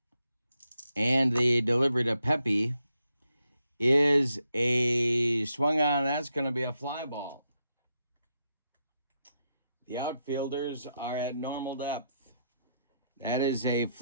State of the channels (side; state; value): both; inverted; correlation -0.82